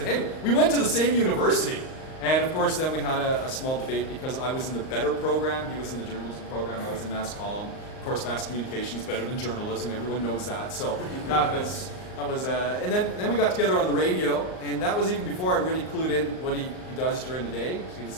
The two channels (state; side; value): late; right; 38 ms